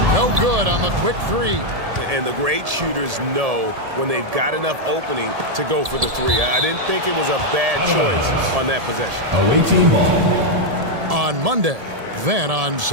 No good on the quick 3. And the great shooters know when they've got enough opening to go for the 3. I didn't think it was a bad choice on that possession. Away team ball. On Monday, then on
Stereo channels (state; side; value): late; left; 1.7 ms